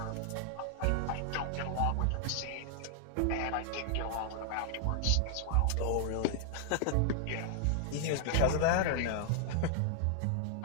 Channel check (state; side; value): different; both; correlation 0.00